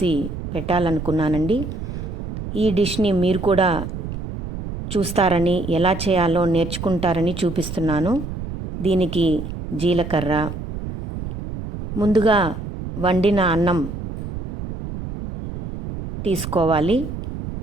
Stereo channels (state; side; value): noise; right; rumble, 7 dB below the sound